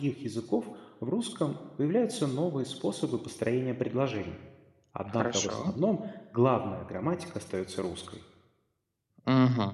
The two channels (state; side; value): identical; both; correlation 1.00